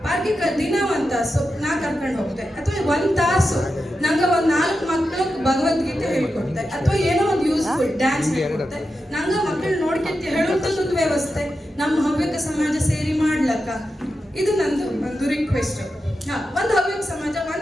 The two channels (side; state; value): both; normal; correlation 0.90